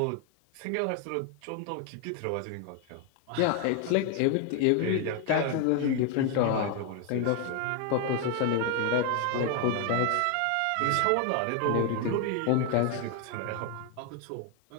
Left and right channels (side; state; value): both; different; correlation 0.01